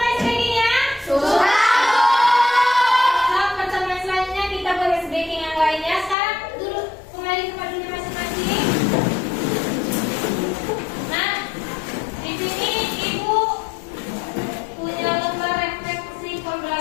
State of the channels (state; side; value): drops out; right; at 6.2 s